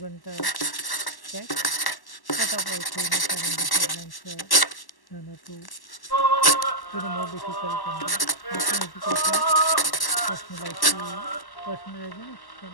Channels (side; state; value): right; late; 1.1 ms